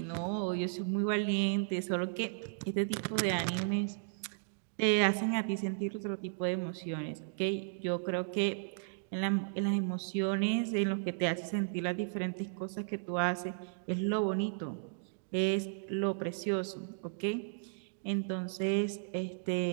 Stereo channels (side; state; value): left; silent; digital silence